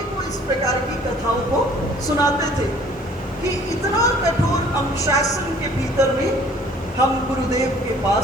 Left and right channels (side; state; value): both; normal; correlation 0.54